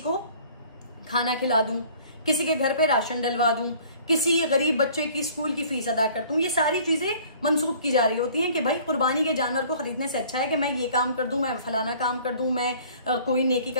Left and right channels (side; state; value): both; inverted; correlation -0.52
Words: खाना खिला दूं, किसी के घर पे राशन डलवा दूं, किसी गरीब बच्चे की स्कूल की फीस अदा करता हूं। ये सारी चीजें मंसूब की जा रही होती हैं कि भाई कुर्बानी के जानवर को खरीदने से अच्छा है कि मैं ये काम कर दूं, मैं फलाना काम कर दूं, मैं कोई नेकी